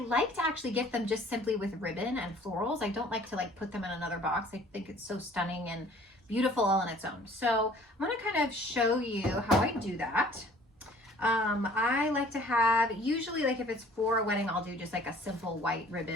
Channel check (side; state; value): both; normal; correlation 0.53